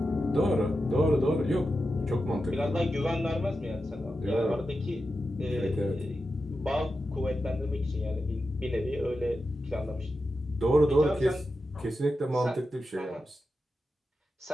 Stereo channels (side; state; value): both; normal; correlation 0.90